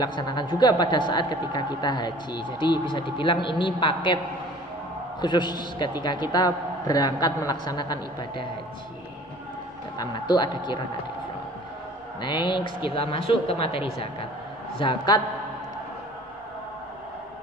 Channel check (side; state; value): both; normal; correlation 0.48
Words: juga pada saat ketika kita haji. Jadi bisa dibilang ini paket khusus ketika kita berangkat melaksanakan ibadah haji. Tamattu, ada qiran, ada ifrad. Next, kita masuk ke materi zakat. Zakat